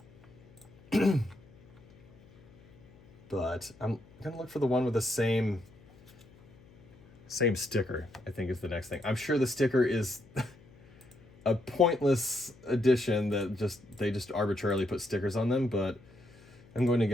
but I'm gonna look for the one with the same sticker. I think is the next thing. I'm sure the sticker is a pointless addition that they just arbitrarily put stickers on them, but I'm going to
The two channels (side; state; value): left; noise; hum, 25 dB below the sound